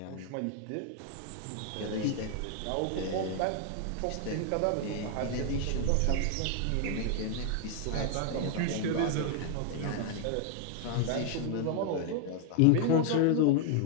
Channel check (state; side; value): different; both; correlation 0.00